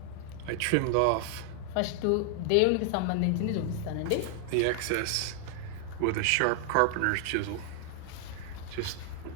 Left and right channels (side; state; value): both; different; correlation 0.00